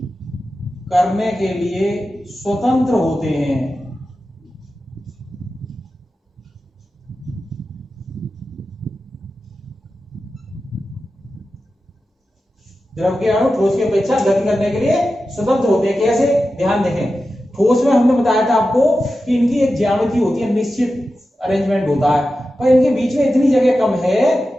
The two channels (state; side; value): normal; both; correlation 0.92